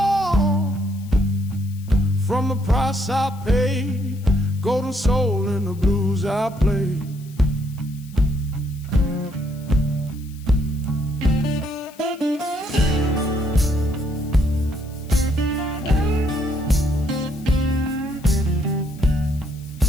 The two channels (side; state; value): left; noise; hiss, 24 dB below the sound